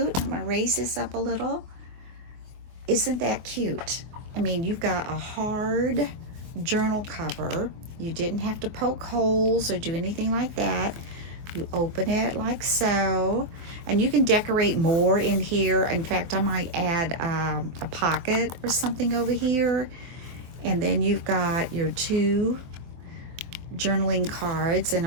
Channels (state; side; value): late; left; 24 ms